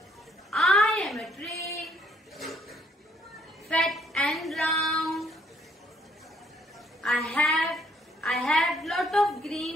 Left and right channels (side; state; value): both; normal; correlation 0.66